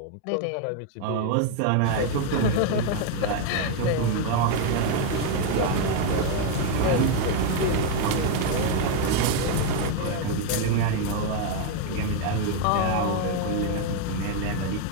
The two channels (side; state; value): both; different; correlation 0.01